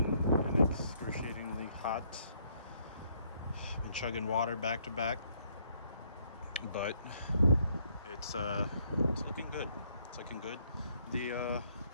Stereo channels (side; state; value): both; inverted; correlation -0.69